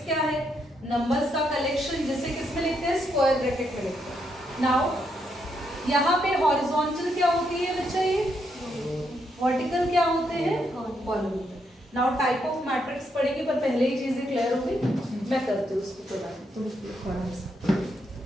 क्या है? नंबर्स का कलेक्शन, जिसे किस में लिखते हैं? स्क्वायर ब्रैकेट में लिखते हैं। नाउ यहाँ पे हॉरिजॉन्टल क्या होती है बच्चा? ये वर्टिकल क्या होते हैं? Column. Now type of matrix पढ़ेंगे, पर पहले ही चीजें क्लियर होगी। मैं करती हूँ उसको थोड़ा सा।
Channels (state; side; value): normal; both; correlation 0.78